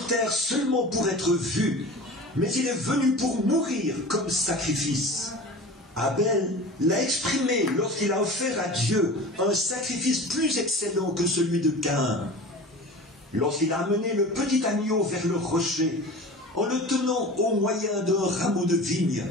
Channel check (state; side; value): normal; both; correlation 0.36